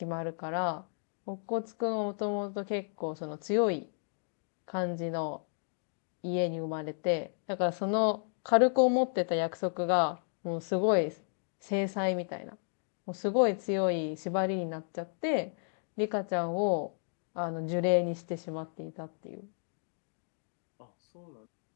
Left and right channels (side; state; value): right; silent; digital silence